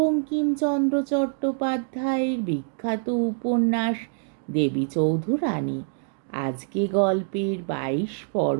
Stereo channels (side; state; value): left; silent; 62 dB below the other